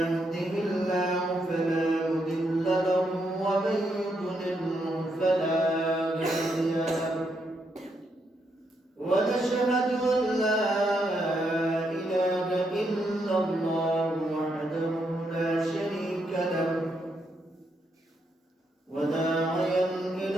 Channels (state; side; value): normal; both; correlation 0.79